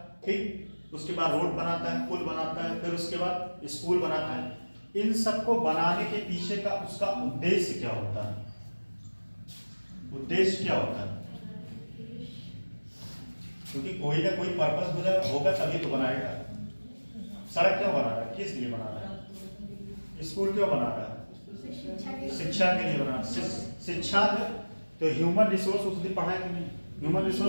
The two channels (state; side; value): inverted; both; correlation -1.00